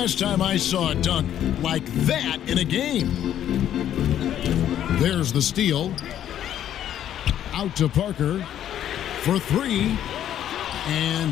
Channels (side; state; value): right; quieter; 10.8 dB